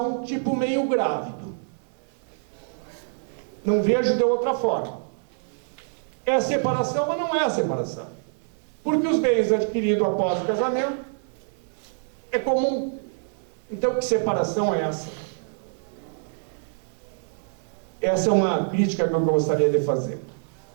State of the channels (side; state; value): left; silent; 61 dB below the other